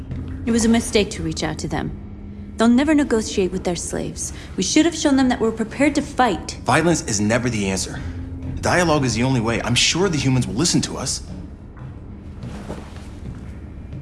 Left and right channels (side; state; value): both; identical; correlation 1.00